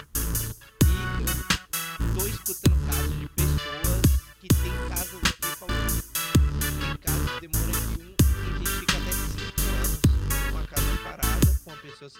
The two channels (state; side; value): identical; both; correlation 1.00